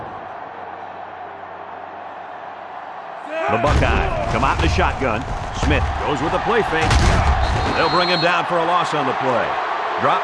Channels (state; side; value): identical; both; correlation 1.00